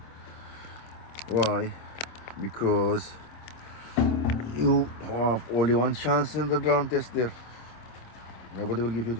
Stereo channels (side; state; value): right; late; 26 ms